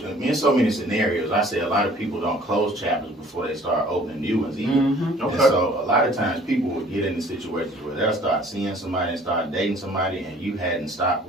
in so many scenarios, I say a lot of people don't close chapters before they start opening new ones either. Mm-hmm. And so a lot of times people will get into situations where they'll start seeing somebody and start dating somebody and you hadn't stopped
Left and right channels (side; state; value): both; normal; correlation 0.54